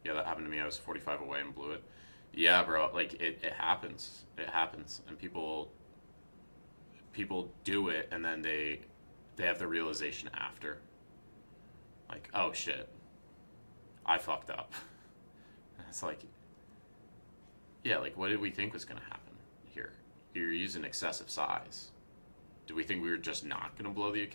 Yeah, that happened to me. I was 45 away and blew it. Yeah, bro. Like it happens. It happens, and people do it, and then they have the realization after. Like, oh shit, I fucked up. It's like, yeah, like what did we think was gonna happen here? You're using excessive size. Do we think we were just not gonna blow the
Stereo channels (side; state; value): both; inverted; correlation -1.00